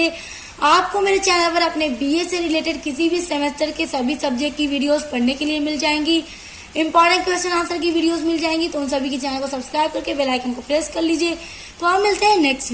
आपको मेरे चैनल पर अपने बीए से रिलेटेड किसी भी सेमेस्टर के सभी सब्जेक्ट की वीडियोस पढ़ने के लिए मिल जाएंगी, इंपॉर्टेंट क्वेश्चन आंसर की वीडियोस मिल जाएंगी। तो उन सभी के चैनल को सब्सक्राइब करके बेल आइकन को प्रेस कर लीजिए। तो आप मिलते हैं नेक्स्ट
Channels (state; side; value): identical; both; correlation 1.00